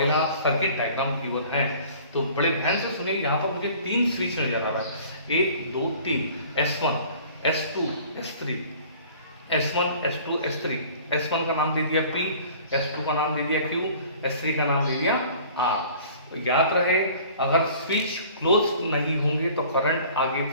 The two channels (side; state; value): both; inverted; correlation -0.48